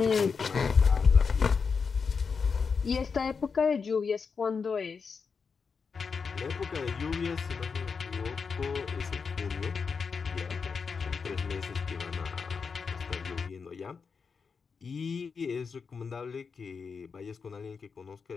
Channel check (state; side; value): quieter; right; 5.5 dB